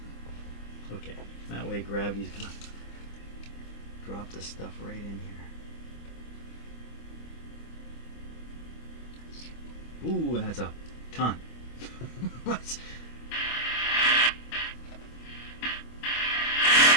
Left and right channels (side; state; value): right; late; 25 ms